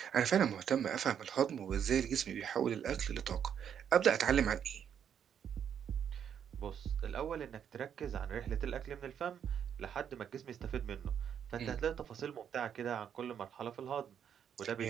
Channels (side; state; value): left; quieter; 8.5 dB